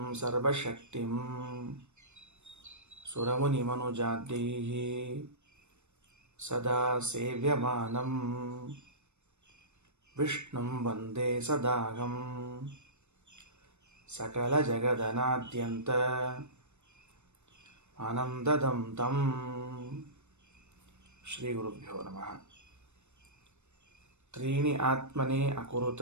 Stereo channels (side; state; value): left; late; 0.82 ms